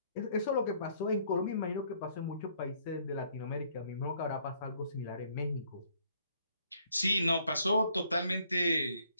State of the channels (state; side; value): inverted; both; correlation -0.66